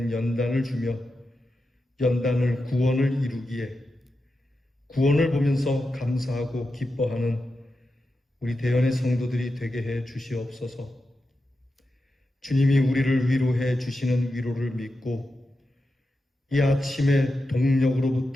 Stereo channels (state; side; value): normal; both; correlation 0.90